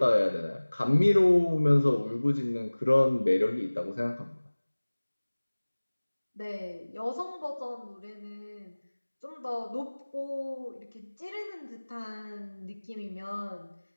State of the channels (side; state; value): both; inverted; correlation -1.00